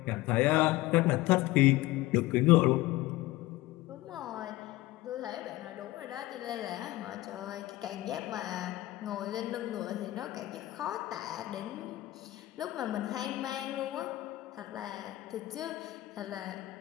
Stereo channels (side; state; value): right; quieter; 17.6 dB